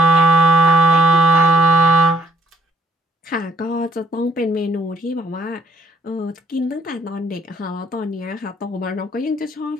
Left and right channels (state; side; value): normal; both; correlation 0.67